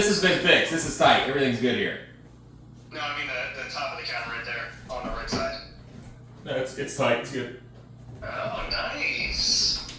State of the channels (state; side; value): identical; both; correlation 1.00